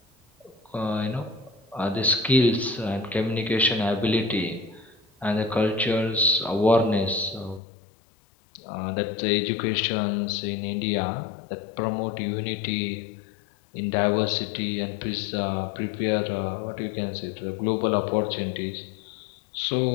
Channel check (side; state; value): right; drops out; at 7.6 s